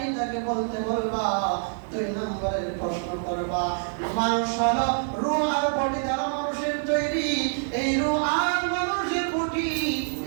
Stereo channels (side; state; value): left; silent; digital silence